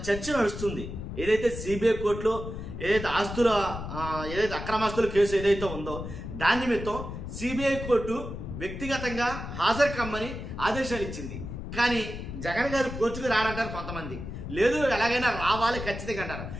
చర్చ నడుస్తుంది. ఏదైతే సిబిఐ కోర్టులో ఏదైతే ఏదైతే అక్రమాస్తుల కేసు ఏదైతే ఉందో దాని నిమిత్తం సిబిఐ కోర్టు వ్యక్తిగతంగా హాజరు కమ్మని ఆదేశాలు ఇచ్చింది. కానీ జగన్ గారు కోర్టుకు రాడంటారు కొంతమంది. లేదు, ఎలాగైనా రావాలి ఖచ్చితంగా అంటారు.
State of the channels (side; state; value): left; noise; rumble, 8 dB below the sound